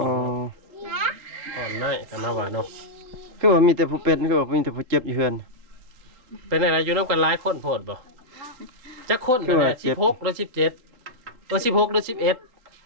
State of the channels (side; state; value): left; late; 3.8 ms